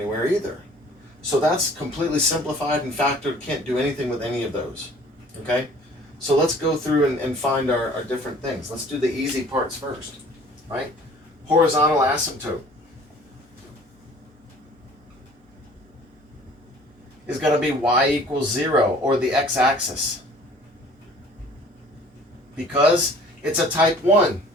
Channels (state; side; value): normal; both; correlation 0.51